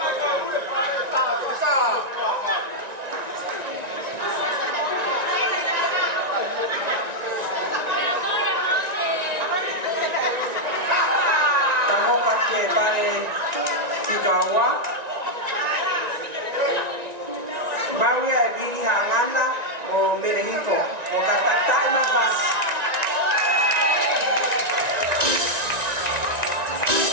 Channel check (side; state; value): left; late; 1.9 ms